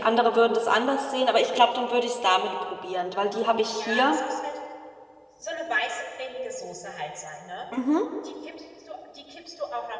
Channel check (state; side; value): identical; both; correlation 1.00